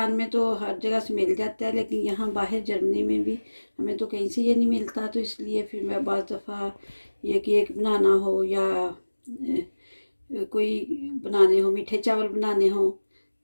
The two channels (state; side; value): inverted; both; correlation -1.00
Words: में तो हर जगह से मिल जाता है, लेकिन यहाँ बाहर जर्मनी में भी हमें तो कहीं से ये नहीं मिलता। तो इसलिए फिर मैं बाज़ दफ़ा ये केक बनाना हो या कोई बनाने हो, मीठे चावल बनाने हो,